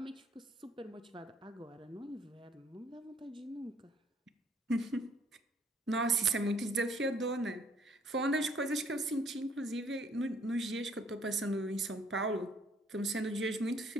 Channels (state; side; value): normal; both; correlation 0.62